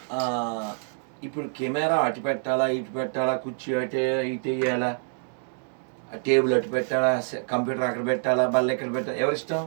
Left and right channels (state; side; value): silent; left; digital silence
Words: ఇప్పుడు కెమెరా అటు పెట్టాలా ఇటు పెట్టాలా, కుర్చీ అటే ఇటు వేయాలా, టేబుల్ అటు పెట్టాలా, కంప్యూటర్ అక్కడ పెట్టాలా, బల్ల ఎక్కడ పెట్టాలా, ఎవరిష్టం?